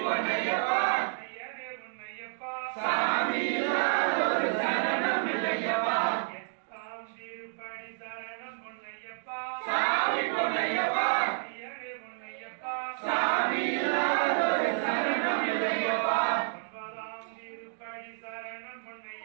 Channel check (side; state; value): left; silent; digital silence